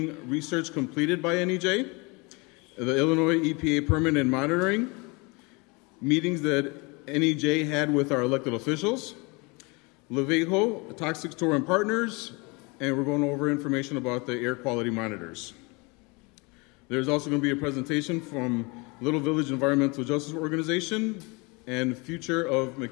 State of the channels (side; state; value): right; quieter; 28.2 dB